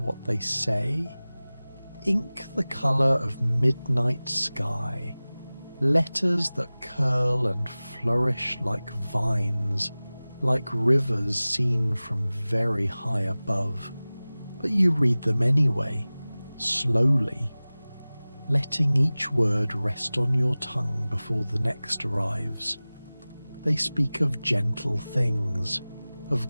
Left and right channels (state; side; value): inverted; both; correlation -0.98